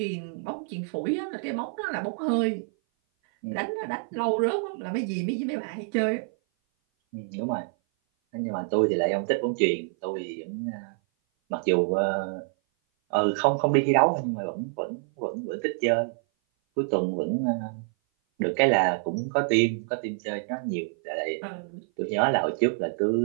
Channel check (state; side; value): silent; left; 57 dB below the other